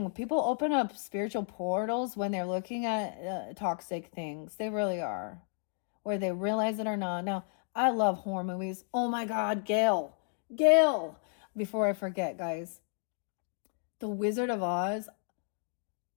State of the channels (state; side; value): silent; right; digital silence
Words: People open up spiritual portals when they're looking at toxic things. They really are, whether they realize it or not. Now, I love horror movies. Oh my God, Gail. Before I forget, guys, The Wizard of Oz